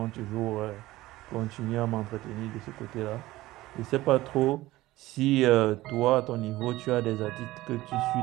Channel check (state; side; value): quieter; left; 17.4 dB